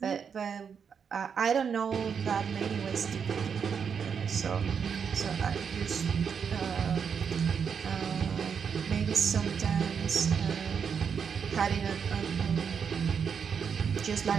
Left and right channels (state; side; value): quieter; left; 6.8 dB